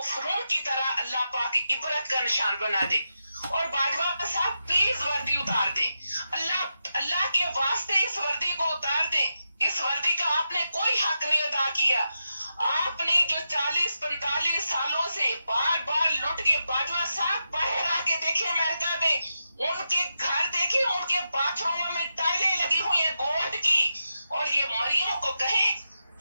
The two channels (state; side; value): inverted; both; correlation -0.87